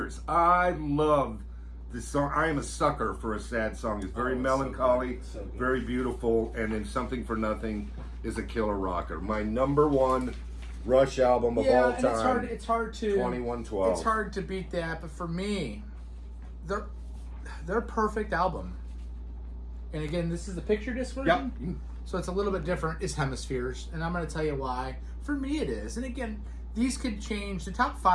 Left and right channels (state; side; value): identical; both; correlation 1.00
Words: I love this song. I am a sucker for a sad song. It's very melancholy, so good. Very beautiful, and then Something for Nothing is a killer rocker. My number 1 Rush album of all time. It's hard to 2112. It's hard to beat that, but for me, they're a perfect album. And again, this is the picture disc version. Yep. So it's a little bit different. It's Hemispheres, and I'm going to tell you why. For me, it is. And again, these could change. The top